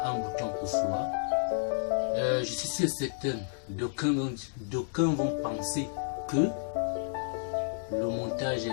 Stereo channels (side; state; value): right; silent; digital silence